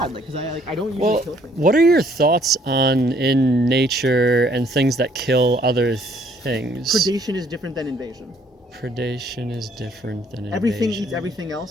like, because I don't usually kill things. What are your thoughts on in nature and things that kill other things? Predation is different than invasion. Predation is different than invasion. Everything eats everything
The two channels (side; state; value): both; normal; correlation 0.64